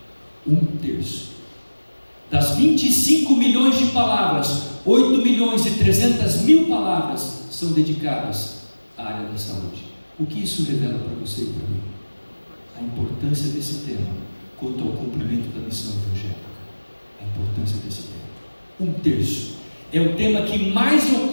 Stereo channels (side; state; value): both; inverted; correlation -1.00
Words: 1/3 das 25 milhões de palavras, 8.300.000 palavras são dedicadas à área da saúde. O que isso revela para você e para mim? A importância desse tema quanto ao cumprimento da missão evangélica. A importância desse tema. 1/3 é o tema que mais